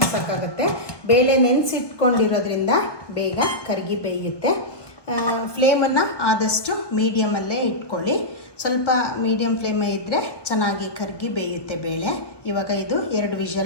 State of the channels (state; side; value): late; right; 1.2 ms